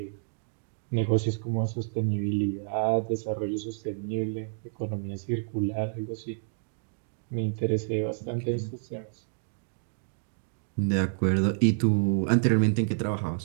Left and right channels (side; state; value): left; silent; digital silence